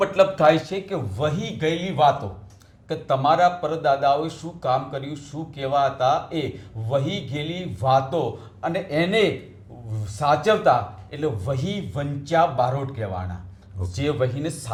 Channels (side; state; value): both; identical; correlation 1.00